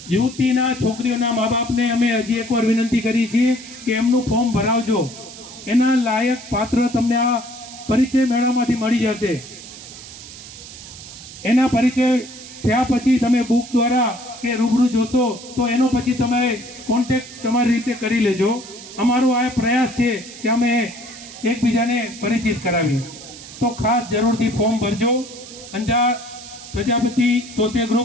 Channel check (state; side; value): noise; right; hiss, 15 dB below the sound